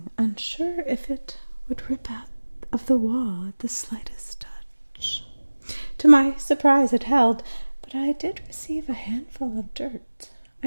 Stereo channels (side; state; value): both; inverted; correlation -1.00